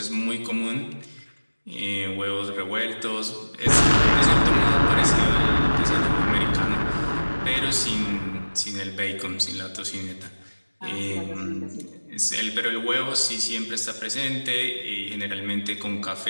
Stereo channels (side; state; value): both; inverted; correlation -1.00